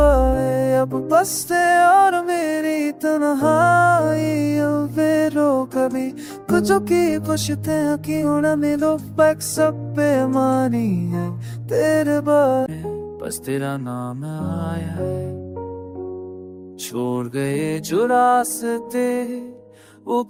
अब बसते और मेरी तन्हाई रो कभी कुछ की पुछते हैं कि उड़ा मेरे पैक सब बेमानी है तेरे बारे। बस तेरा नाम आया है, छोड़ गए जो रास्ते वो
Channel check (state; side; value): identical; both; correlation 1.00